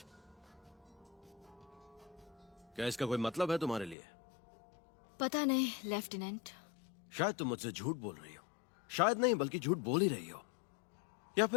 क्या इसका कोई मतलब है तुम्हारे लिए? पता नहीं लेफ्टिनेंट। शायद तुम मुझसे झूठ बोल रही हो, शायद नहीं बल्कि झूठ बोल ही रही हो, या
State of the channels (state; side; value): drops out; right; at 4.0 s